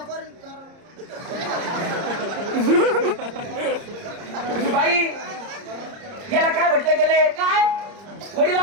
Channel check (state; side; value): late; left; 30 ms